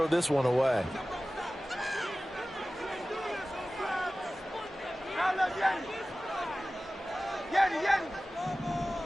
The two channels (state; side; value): normal; both; correlation 0.97